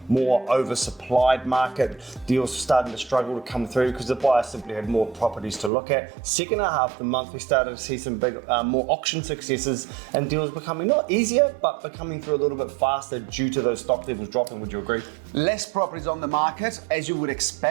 more oversupplied market. Deals were starting to struggle to come through because the buyers simply had more properties to look at. Second half of the month, we started to see some big, more auction successes and deals becoming not easier, but becoming through a little bit faster due to those stock levels dropping. Would you agree? Less properties on the market, as you would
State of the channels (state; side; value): drops out; left; at 5.7 s